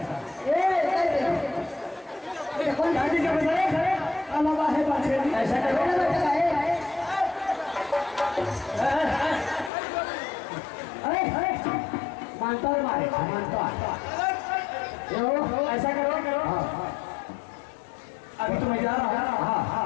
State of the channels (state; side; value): drops out; right; at 9.7 s